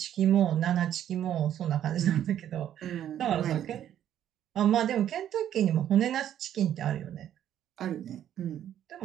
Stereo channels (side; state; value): left; quieter; 10.7 dB